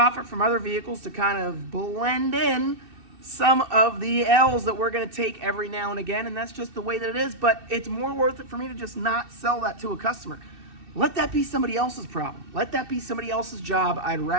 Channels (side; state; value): left; late; 2.6 ms